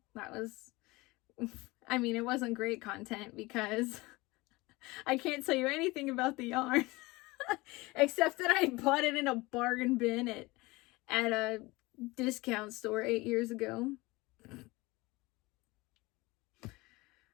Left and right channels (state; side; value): quieter; right; 22.2 dB